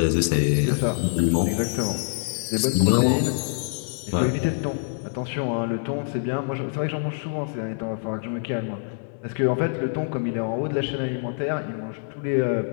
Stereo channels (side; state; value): right; silent; 60 dB below the other